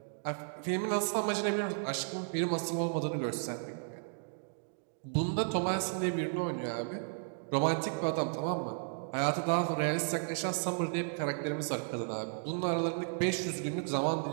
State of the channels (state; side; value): silent; left; digital silence